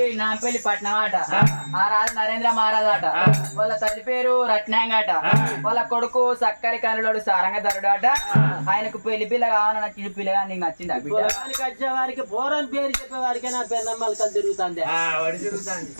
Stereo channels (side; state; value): both; inverted; correlation -1.00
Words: నాంపల్లి పట్నం ఆట. ఆ రాజు నరేంద్ర మహారాజ్ ఆట. వాళ్ళ తల్లి పేరు రత్నాంగట. వాళ్ళ కొడుకు సక్కరి కనులోడు సారంగధరుడు ఆట. ఆయనకు పెళ్లి పిల్ల కావాలని నచ్చిన పిల్లగా నీకు నచ్చిందా బిడ్డ? వచ్చే వారికి పోరని పేరు చెప్పే వారికి నా పెన్నమ్మలు కలిసి తిరుగుతుంది.